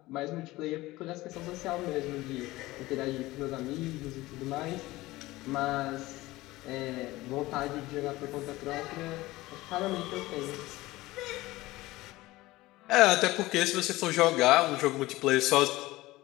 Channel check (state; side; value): quieter; right; 18.8 dB